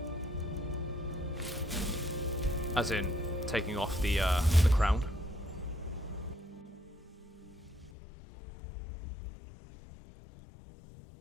As in, taking off the crown.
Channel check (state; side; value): drops out; right; at 7.9 s